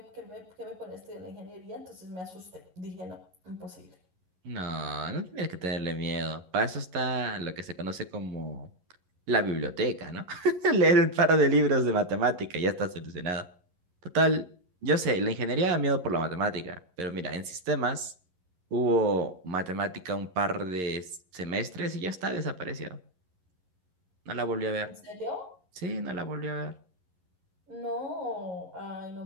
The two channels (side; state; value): left; late; 11 ms